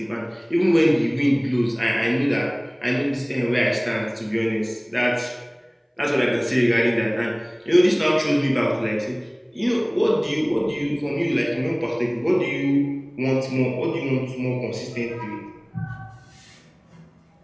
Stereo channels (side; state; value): both; identical; correlation 1.00